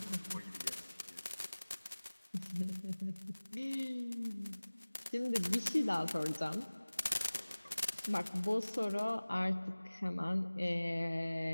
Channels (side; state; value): both; inverted; correlation -1.00